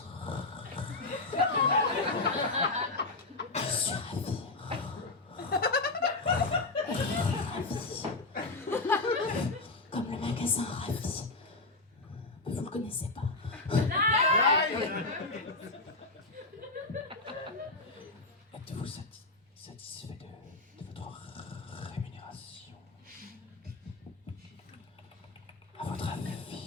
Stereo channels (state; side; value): quieter; right; 3.3 dB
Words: Je suis ravie. Ravie. Comme le magasin Ravi. Vous le connaissez pas. Êtes-vous satisfait de votre rémunération? À votre